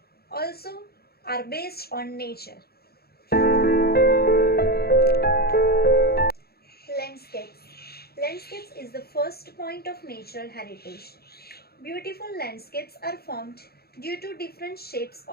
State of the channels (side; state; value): right; late; 0.46 ms